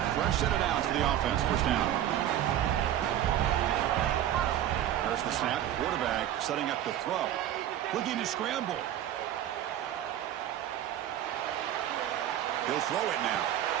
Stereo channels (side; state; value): left; quieter; 11.6 dB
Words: Fresh set it down to the offense. First down. There's the snap. Quarterback setting up to throw. Looking to scramble. He'll throw it now.